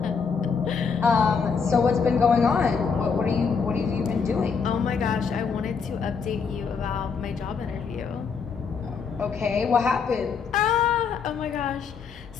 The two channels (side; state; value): right; quieter; 5.8 dB